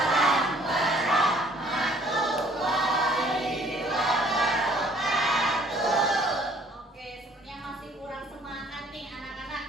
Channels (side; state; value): both; normal; correlation 0.59